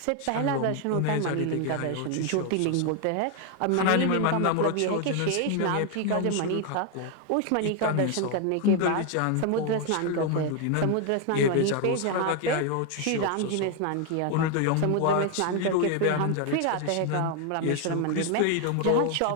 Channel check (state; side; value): different; both; correlation 0.01